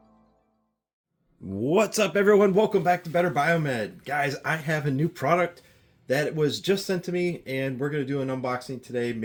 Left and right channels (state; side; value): identical; both; correlation 1.00